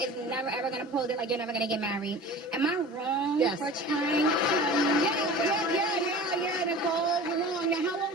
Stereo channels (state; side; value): normal; both; correlation 0.39